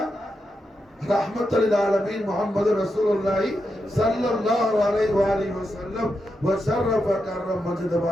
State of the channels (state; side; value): normal; both; correlation 0.86